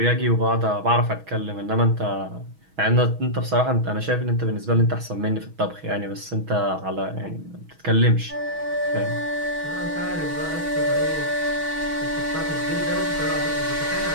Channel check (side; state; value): left; late; 6.2 ms